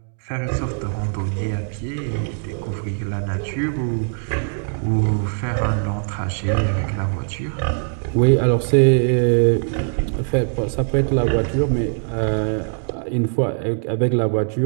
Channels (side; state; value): left; silent; 59 dB below the other